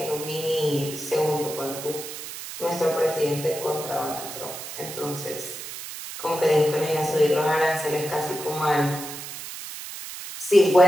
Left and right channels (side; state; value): right; noise; hiss, 10 dB below the sound